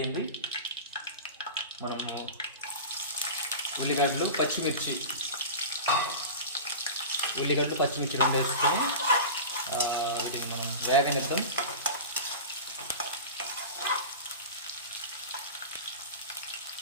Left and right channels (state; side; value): inverted; both; correlation -0.31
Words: మనము ఉల్లిగడ్డలు పచ్చిమిర్చి రెండు వేసుకొని వీటిని మనం వేగనిద్దాం.